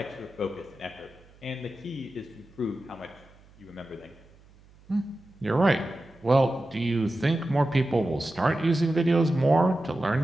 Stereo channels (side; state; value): right; noise; hum, 26 dB below the sound